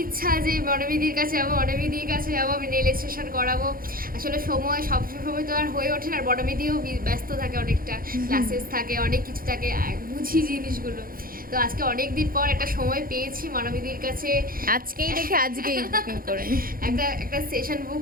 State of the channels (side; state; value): left; late; 0.42 ms